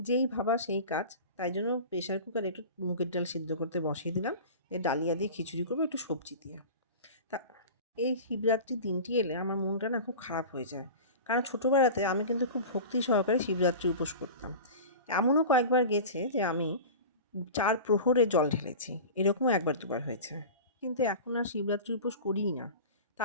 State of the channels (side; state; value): both; inverted; correlation -0.33